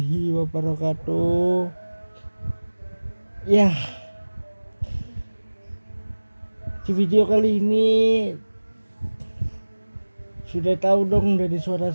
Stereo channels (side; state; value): both; inverted; correlation -1.00